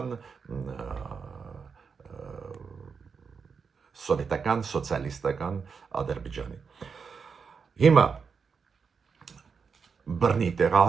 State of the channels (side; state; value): left; quieter; 5.7 dB